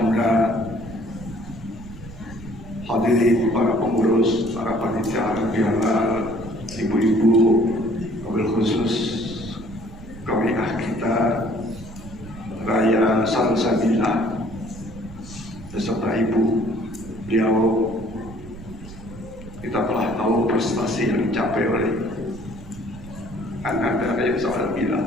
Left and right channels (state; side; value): noise; right; rumble, 16 dB below the sound